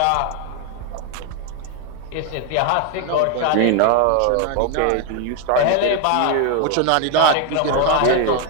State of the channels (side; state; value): both; different; correlation 0.01